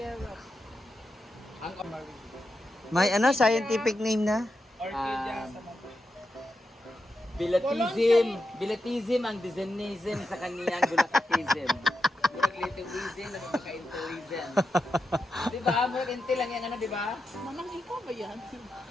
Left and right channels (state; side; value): normal; both; correlation 0.87